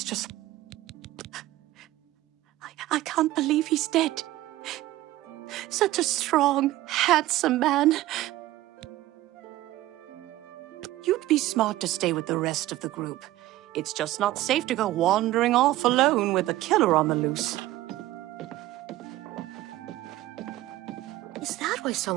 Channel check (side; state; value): left; quieter; 16.0 dB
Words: just... I can't believe he's dead. Such a strong, handsome man. You'd be smart to stay with the rest of the group. It's just not safe to go wandering off alone with a killer on the loose. Is that why